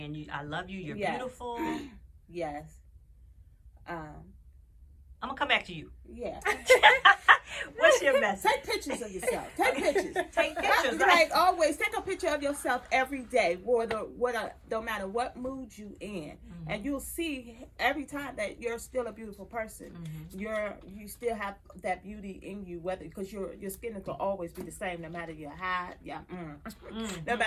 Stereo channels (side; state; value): both; identical; correlation 1.00